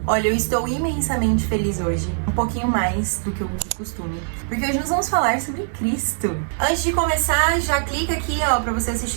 Olha, eu estou imensamente feliz hoje, um pouquinho mais do que o costume, porque hoje nós vamos falar sobre Cristo. Antes de começar, já clica aqui, ó, pra você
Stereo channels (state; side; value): silent; left; digital silence